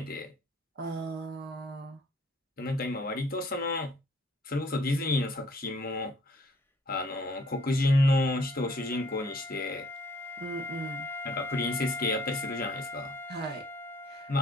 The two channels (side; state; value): both; normal; correlation 0.60